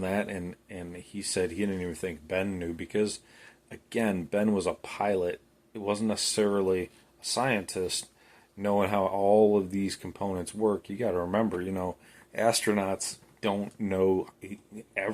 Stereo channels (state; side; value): identical; both; correlation 1.00